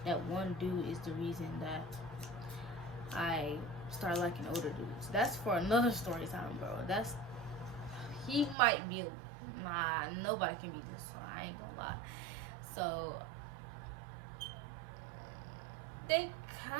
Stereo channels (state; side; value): drops out; left; at 8.6 s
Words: one dude is the reason that I started liking older dudes. That's for another story time, bro. He might be, nah, nobody can be this, so I ain't gonna lie. So, they